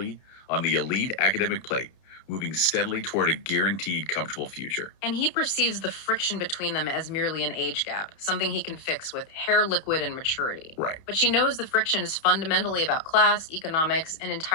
on the elite academic plate, moving steadily toward a guaranteed comfortable future. And he perceives the friction between them as merely an age gap, something he can fix with hair liquid and maturity. Right. But she knows the friction is fundamentally about class, economics, and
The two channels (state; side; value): late; right; 31 ms